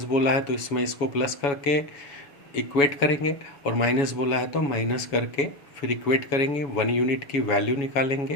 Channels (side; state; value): right; late; 7.1 ms